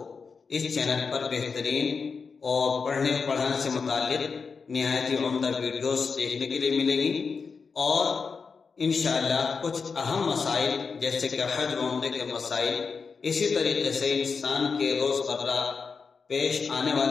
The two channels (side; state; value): right; quieter; 5.2 dB